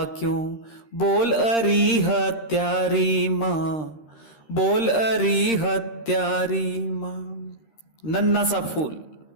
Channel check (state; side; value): late; right; 13 ms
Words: क्यों, बोल अरी हत्यारी माँ, बोल अरी हत्यारी माँ। नन्हा सा फूल